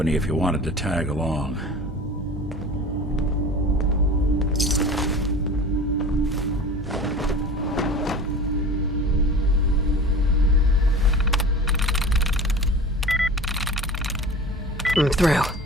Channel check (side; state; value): both; normal; correlation 0.37